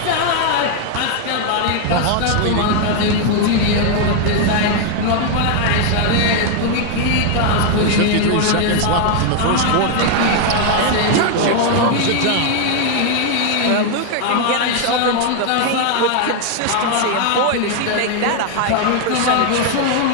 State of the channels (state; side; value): different; both; correlation 0.00